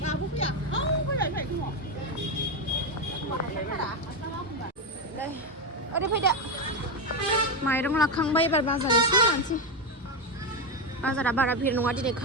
दाबो फैया फैबाय ओरै फैदो माइरं लाखांबाय एबार बाजार एसे लानोसै बाजारा बारा भिर नङा दिनै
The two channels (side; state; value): both; normal; correlation 0.10